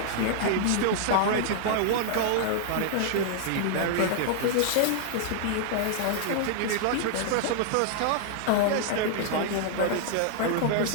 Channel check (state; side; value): different; both; correlation -0.01